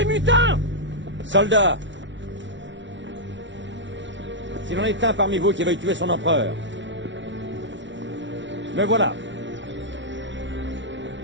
mutins. Soldats! S'il en est un parmi vous qui veuille tuer son empereur, me voilà.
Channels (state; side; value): late; left; 0.54 ms